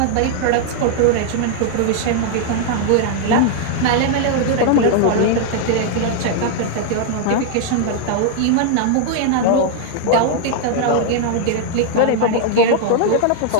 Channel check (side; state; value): both; different; correlation 0.00